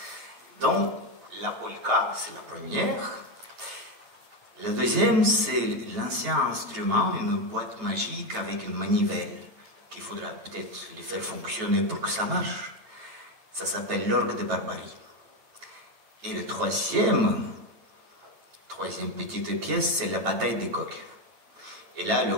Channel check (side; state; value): left; late; 9.2 ms